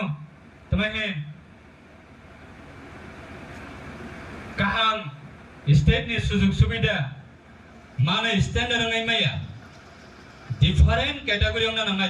তোমাহে কাহাম स्टेट नि सुजुग सुबिदा माने स्टैंडर्ड नङै माया डिफरेंट कैटेगरी अंगना नङै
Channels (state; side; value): identical; both; correlation 1.00